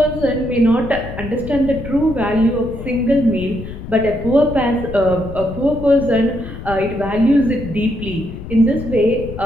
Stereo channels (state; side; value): noise; left; rumble, 10 dB below the sound